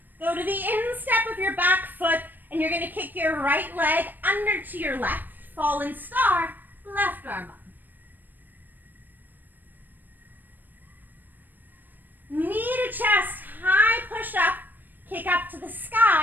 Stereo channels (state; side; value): late; left; 0.090 ms